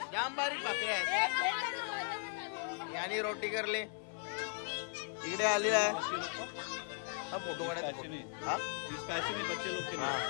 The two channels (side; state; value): right; silent; 53 dB below the other